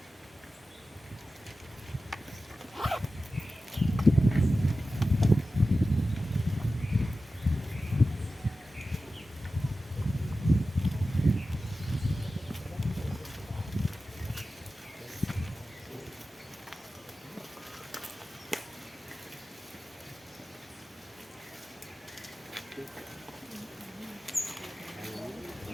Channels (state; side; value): normal; both; correlation 0.93